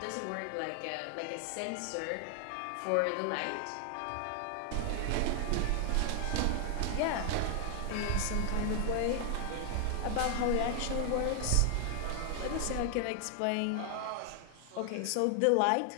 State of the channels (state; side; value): different; both; correlation 0.00